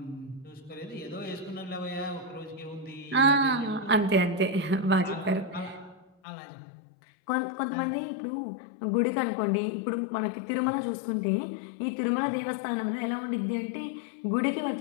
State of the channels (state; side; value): drops out; right; at 6.1 s